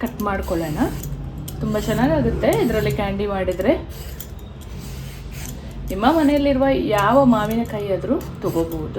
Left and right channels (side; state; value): both; identical; correlation 1.00